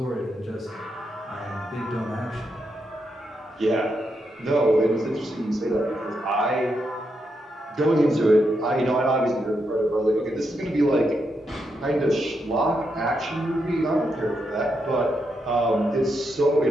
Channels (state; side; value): normal; both; correlation 0.82